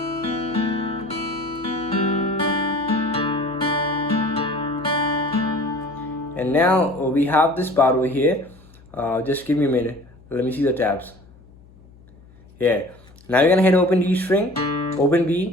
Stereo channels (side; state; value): left; noise; hum, 25 dB below the sound